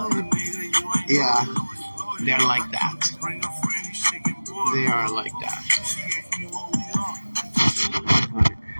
you. Yeah, they're like that. They are like that.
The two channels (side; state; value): both; inverted; correlation -1.00